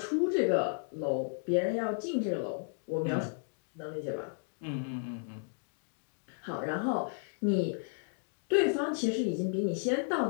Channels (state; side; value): silent; right; digital silence